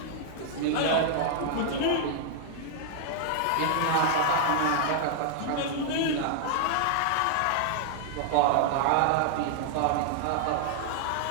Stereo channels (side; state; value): both; different; correlation 0.00